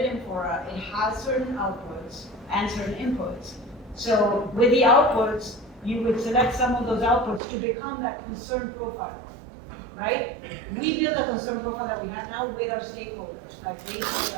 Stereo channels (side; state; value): left; drops out; at 7.4 s